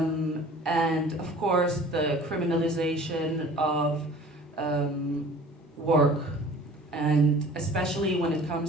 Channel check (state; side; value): normal; both; correlation 0.46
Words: of course, the criminalization of work. And especially when it